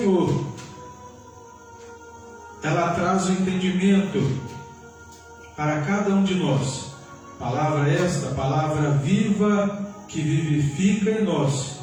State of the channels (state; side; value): identical; both; correlation 1.00